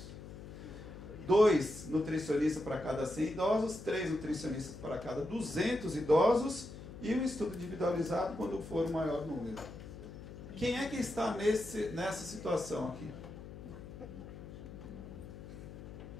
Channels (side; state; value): left; noise; hum, 12 dB below the sound